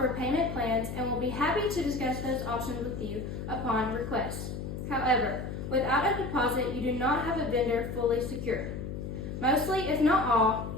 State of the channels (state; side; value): noise; left; hum, 6 dB below the sound